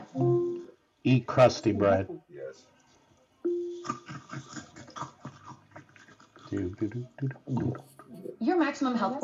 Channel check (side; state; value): both; identical; correlation 1.00